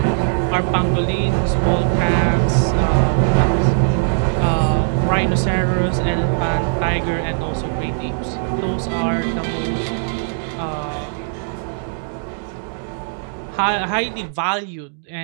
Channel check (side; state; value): left; silent; digital silence